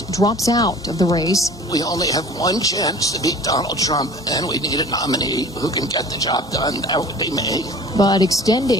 drops out of the race. We only have one chance to beat Donald Trump, and we need a nominee who can get the job done. That would be me. But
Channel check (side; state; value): both; normal; correlation 0.44